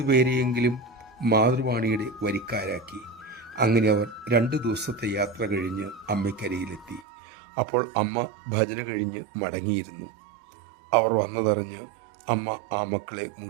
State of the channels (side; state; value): left; drops out; at 7.1 s